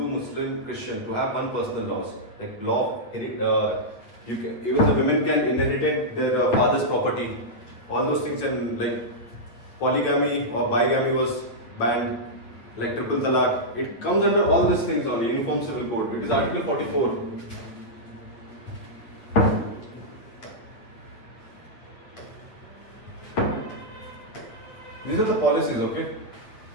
Muslim, Christian, to have one personal laws. Like law, even the women can inherit their father's property. All those things, and like polygamy or bigamy was banned. Like triple talaq, it comes under all these things on the Uniform Civil Code. It is Article 44. These are the policies, okay?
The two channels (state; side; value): late; right; 8.9 ms